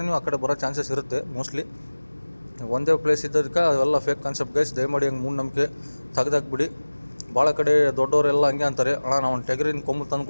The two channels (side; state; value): both; inverted; correlation -1.00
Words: ನೀವು ಆ ಕಡೆ ಬರೋ ಚಾನ್ಸಸ್ ಇರುತ್ತೆ ಮೋಸ್ಟ್ಲಿ. ಒಂದೇ ಪ್ಲೇಸ್ ಇದ್ದದಕ್ಕೆ ಅವೆಲ್ಲ ಫೇಕ್ ಕಾನ್ಸೆಪ್ಟ್ ಗೈಸ್. ದಯಮಾಡಿ ಹಂಗೆ ಮೂಢನಂಬಿಕೆ ತೆಗ್ದಾಕ್ಬಿಡಿ. ಭಾಳ ಕಡೆ ದೊಡ್ಡವರೆಲ್ಲ ಹಂಗೆ ಅಂತಾರೆ, ಅಣ್ಣ ನಾವು ಒಂದು ಟೆಗರಿನ ಕೊಂಬು ತಂದು